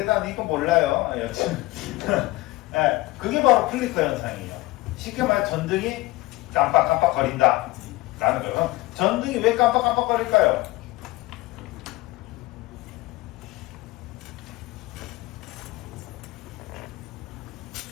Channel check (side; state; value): right; quieter; 19.7 dB